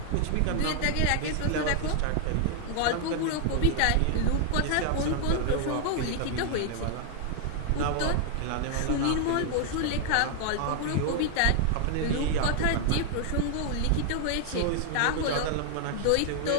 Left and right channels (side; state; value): both; different; correlation 0.00